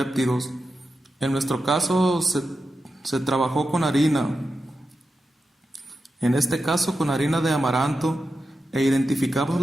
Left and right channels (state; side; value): normal; both; correlation 0.90